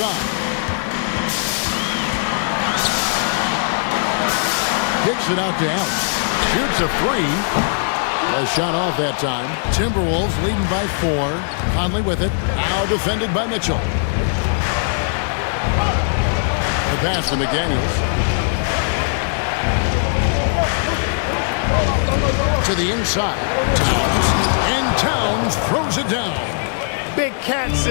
Kicks it out to Allen. Shoots a three. A shot off that time. Timberwolves leading by 4. Conley with it. Now defended by Mitchell. The pass to McDaniels. To the inside. Towns. And Towns throws it down. Big Cat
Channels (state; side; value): silent; right; digital silence